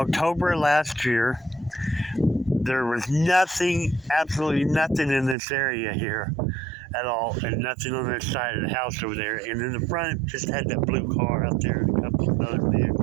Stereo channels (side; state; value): left; drops out; at 5.4 s